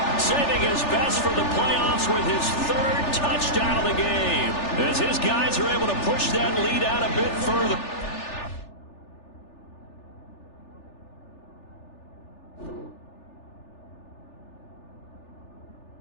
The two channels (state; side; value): late; right; 3.4 ms